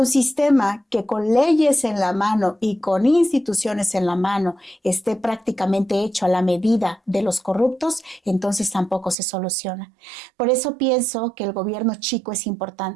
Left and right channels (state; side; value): drops out; left; at 9.2 s